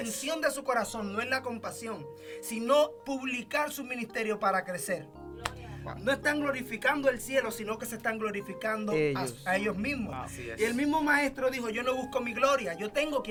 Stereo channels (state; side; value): identical; both; correlation 1.00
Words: de su corazón no es la compasión, sino publicar su ministerio para crecer. No están glorificando el cielo, sino que se están glorificando a ellos mismos. Y el mismo maestro dijo, yo no busco mi gloria, yo tengo